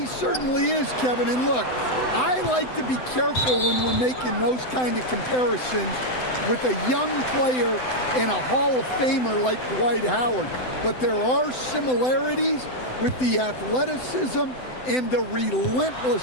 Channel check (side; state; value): right; late; 7.9 ms